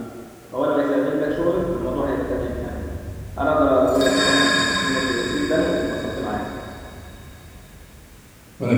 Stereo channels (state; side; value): identical; both; correlation 1.00